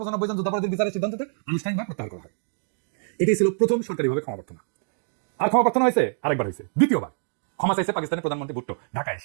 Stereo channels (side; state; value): left; silent; digital silence